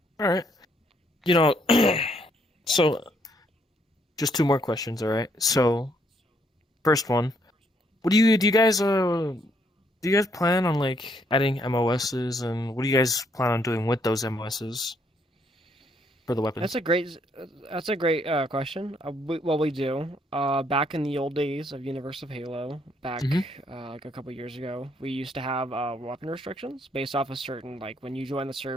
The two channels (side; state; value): both; normal; correlation 0.71